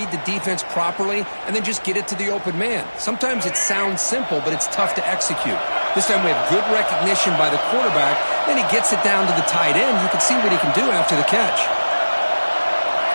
the defense properly and then just get it to the open man. Sometimes it sounds simple, but it's tough to execute. This time we have good recognition by the quarterback. Then he gets it down to the tight end. You can see what he can do after the catch.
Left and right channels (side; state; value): both; inverted; correlation -1.00